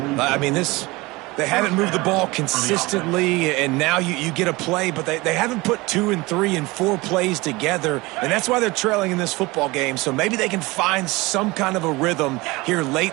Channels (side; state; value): left; quieter; 22.5 dB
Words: I mean, they haven't moved the ball consistently, and now you get a play, but they haven't put 2 and 3 and 4 plays together, and that's why they're trailing in this football game. So maybe they can find some kind of a rhythm here late